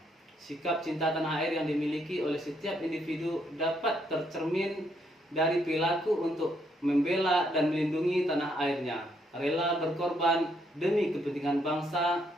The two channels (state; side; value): normal; both; correlation 0.73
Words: Sikap cinta tanah air yang dimiliki oleh setiap individu dapat tercermin dari perilaku untuk membela dan melindungi tanah airnya, rela berkorban demi kepentingan